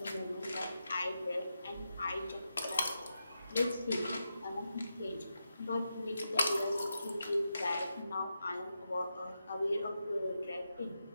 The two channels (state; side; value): inverted; both; correlation -0.87